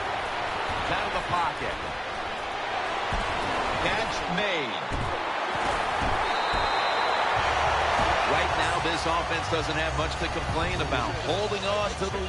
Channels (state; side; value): identical; both; correlation 1.00